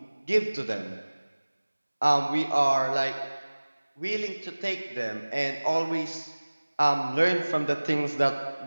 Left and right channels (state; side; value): inverted; both; correlation -1.00